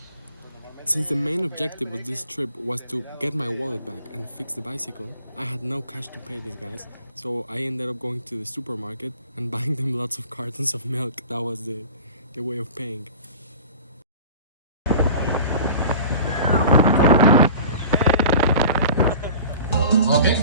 Since the main objective of this trip was to get my wallet back and fix the bicycle, I had no cash to pay these guys, so I ended up going to the supermarket and buying them lots of cartons of milk. That was the way of paying. Ok,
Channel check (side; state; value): both; inverted; correlation -0.41